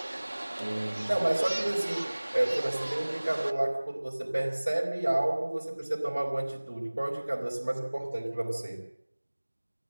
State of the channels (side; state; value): both; inverted; correlation -1.00